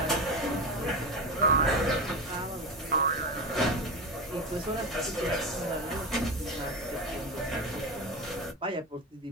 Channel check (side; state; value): both; normal; correlation 0.20